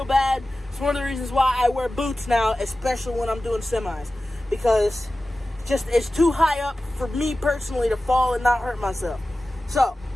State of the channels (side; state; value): both; normal; correlation 0.95